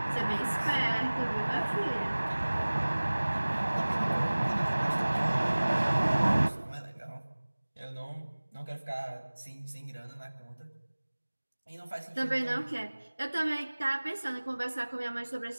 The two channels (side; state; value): both; inverted; correlation -1.00